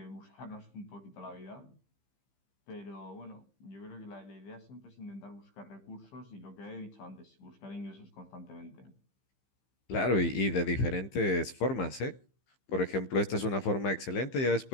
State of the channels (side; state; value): right; late; 15 ms